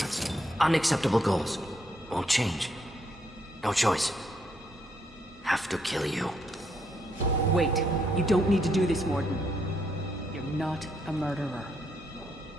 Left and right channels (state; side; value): normal; both; correlation 0.75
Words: Unacceptable goals. Won't change. No choice. Have to kill you. Wait. You don't need to do this, Morden. You're not a murderer.